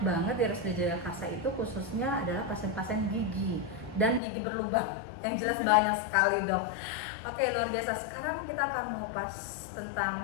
di RSUD Jagakarsa itu khususnya adalah pasien-pasien gigi dan gigi berlubang yang jelas banyak sekali dok. Oke, luar biasa. Sekarang kita akan mengupas tentang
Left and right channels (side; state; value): right; drops out; at 4.2 s